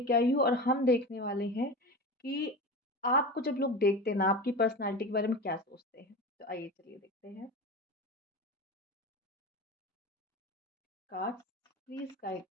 आई हूँ और हम देखने वाले हैं कि आपको जब लोग देखते हैं ना, आपकी पर्सनालिटी के बारे में क्या सोचते हैं। तो आइए चलिए देखते हैं। Cards please guide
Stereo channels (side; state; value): both; normal; correlation 0.28